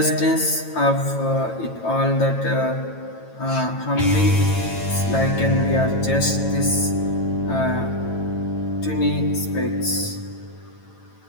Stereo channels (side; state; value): right; late; 9.1 ms